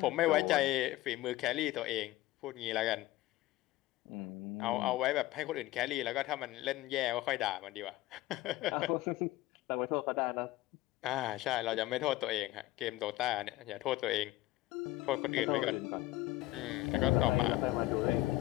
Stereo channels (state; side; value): quieter; right; 17.0 dB